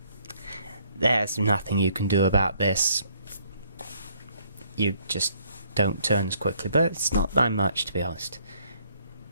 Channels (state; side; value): inverted; both; correlation -0.65